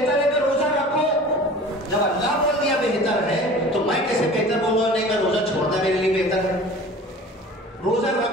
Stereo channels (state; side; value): normal; both; correlation 0.42